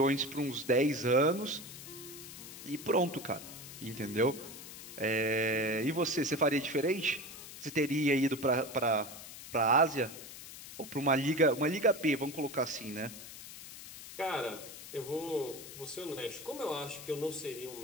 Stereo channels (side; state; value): left; noise; hiss, 13 dB below the sound